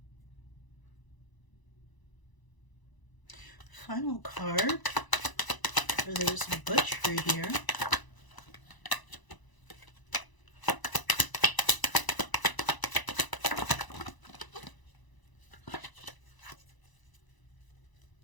Final card for this butchery here.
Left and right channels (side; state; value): right; late; 1.0 ms